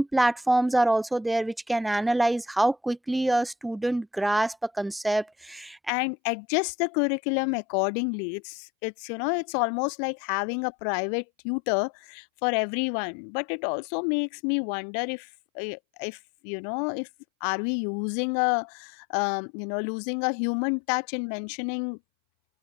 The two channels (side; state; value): right; drops out; at 5.9 s